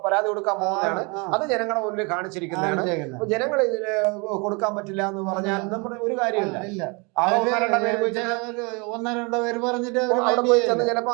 പരാതി കൊടുക്കാൻ പോകുന്നതാണ്. അത് ജനങ്ങളുടെ മുന്നിൽ കാണിച്ചിരിക്കുന്നതാണ്. അപ്പൊ ജനങ്ങൾ ഇതിന് കൊടുക്കാൻ പറ്റില്ല എന്ന് പറഞ്ഞാൽ നമ്മുടെ ഒരു കാര്യമില്ല. 1-2 പേര് പറഞ്ഞിട്ട് അവിടെ പോയി ചെന്ന് ചിലപ്പോ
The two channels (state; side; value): quieter; left; 30.2 dB